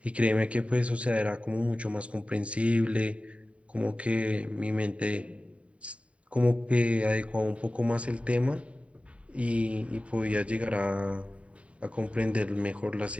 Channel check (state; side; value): late; left; 0.064 ms